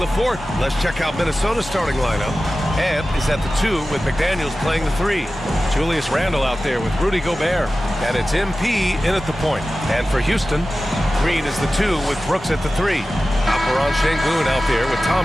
Let's check out Minnesota's starting lineup. Ant is at the 2 with McDaniels playing the 3. Julius Randle out there with Rudy Gobert. And it's MP in at the point. And for Houston, Green is the 2 with Brooks at the 3. Alperon Şengün out there with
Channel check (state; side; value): normal; both; correlation 0.95